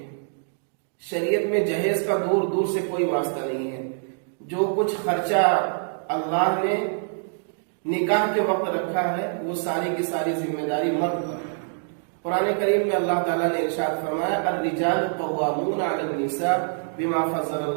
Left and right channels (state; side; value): silent; left; digital silence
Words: شریعت میں جہیز کا دور دور سے کوئی واسطہ نہیں ہے۔ جو کچھ خرچہ اللہ نے نکاح کے وقت رکھا ہے وہ ساری کی ساری ذمہ داری مرد پر ہے۔ قرآن کریم میں اللہ تعالیٰ نے ارشاد فرمایا، الرجال قوامون علی النساء بما فضل